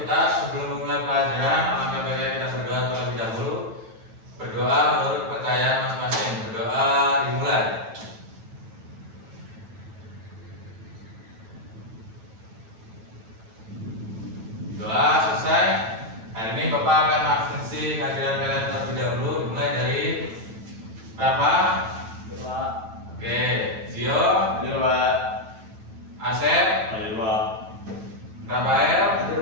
sebelum memulai pelajaran, alangkah baiknya kita berdoa terlebih dahulu. Berdoa menurut kepercayaan masing-masing. Berdoa dimulai. Doa selesai. Hari ini Bapak akan absensi kehadiran kalian terlebih dahulu. Dimulai dari berapa? 2. Oke. Zio. 2. Asep. 2. Rafael.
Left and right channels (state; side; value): late; left; 9.1 ms